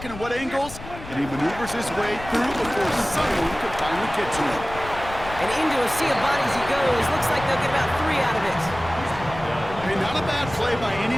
and at what angles, and he maneuvers his way through before someone can finally get to him. And into a sea of bodies he goes. Looks like they'll get about 3 out of it. Hey, not a bad play by any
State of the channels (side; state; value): left; noise; rumble, 13 dB below the sound